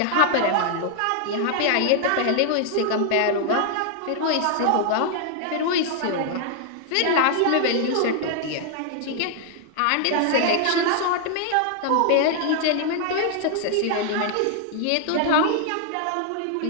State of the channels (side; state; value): both; different; correlation 0.00